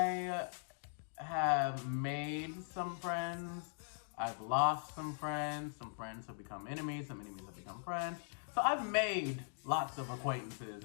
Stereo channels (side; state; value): right; silent; digital silence